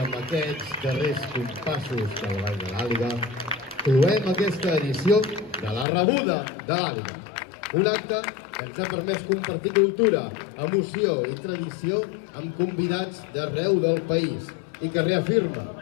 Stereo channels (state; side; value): drops out; right; at 5.9 s